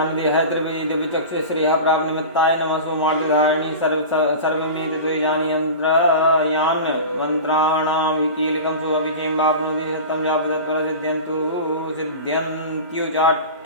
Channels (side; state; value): both; inverted; correlation -0.31